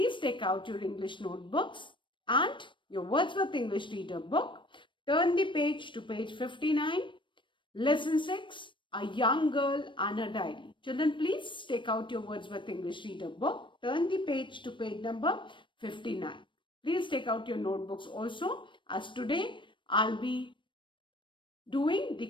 take out your English notebooks and your Wordsworth English Reader book. Turn the page to page 59. Lesson 6, A Young Girl and a Diary. Children, please take out your Wordsworth English Reader book. Turn the page to page number 59. Please take out your notebooks also, as today I'll be doing the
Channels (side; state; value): right; late; 0.24 ms